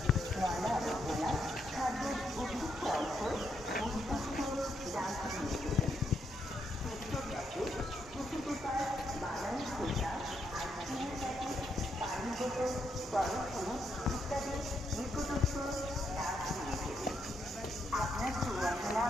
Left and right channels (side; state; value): both; normal; correlation 0.78